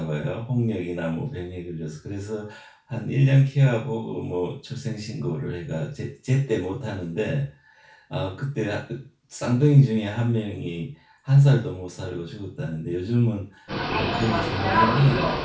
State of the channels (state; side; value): identical; both; correlation 1.00